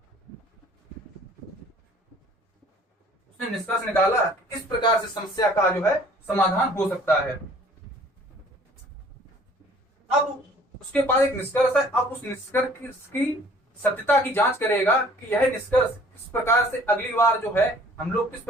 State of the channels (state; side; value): normal; both; correlation 0.54